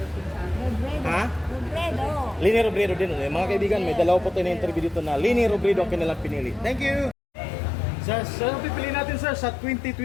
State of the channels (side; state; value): right; drops out; at 7.2 s